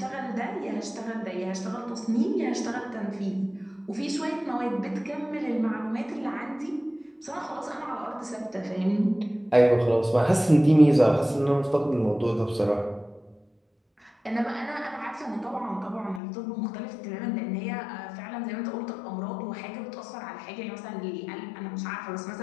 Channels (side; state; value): right; drops out; at 16.2 s